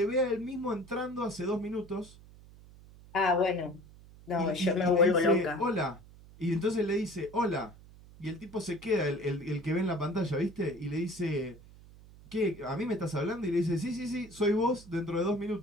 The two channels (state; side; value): noise; right; hum, 21 dB below the sound